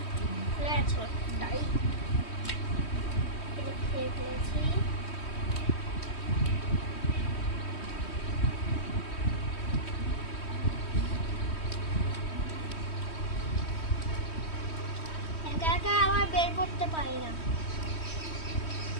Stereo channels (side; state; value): right; late; 3.1 ms